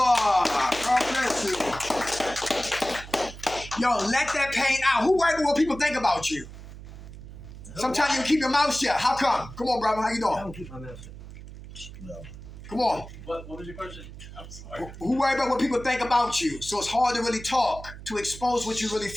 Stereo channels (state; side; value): noise; right; hum, 14 dB below the sound